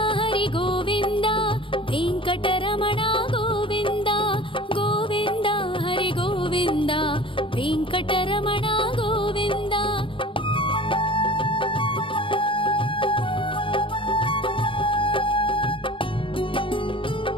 हरि गोविन्द वेङ्कटरमण गोविन्द गोविन्द हरि गोविन्द वेङ्कटरमण गोविन्द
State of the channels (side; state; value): right; late; 0.25 ms